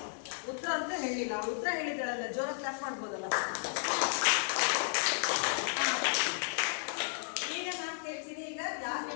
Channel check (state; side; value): silent; right; 55 dB below the other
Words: ಉತ್ತರ ಅಂತ ಹೇಳಿಲ್ಲ, ಉತ್ತರ ಹೇಳಿದಾಳಲ್ಲ, ಜೋರ ಕ್ಲಾಪ್ ಮಾಡ್ಬೋದಲ್ಲ. ಈಗ ನಾನು ಕೇಳ್ತೀನಿ. ಈಗ ಯಾಕೆ